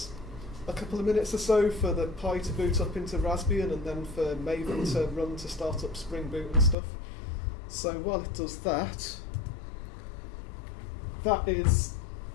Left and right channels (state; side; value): drops out; right; at 6.8 s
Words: a couple of minutes or so for the Pi to boot up into Raspbian and then for Maven to run to start up Spring Boot and stuff. So while it does that, that is